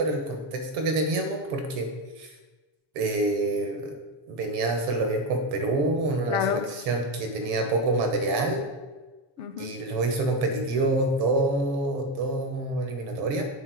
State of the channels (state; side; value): late; left; 7.1 ms